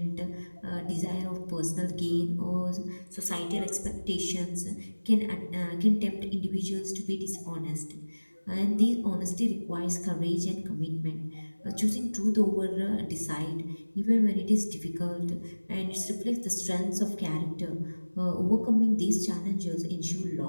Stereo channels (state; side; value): inverted; both; correlation -1.00